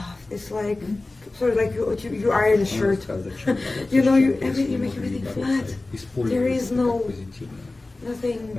It's like sort of like you iron a shirt. You know, you make everything flat. There is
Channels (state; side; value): quieter; right; 3.1 dB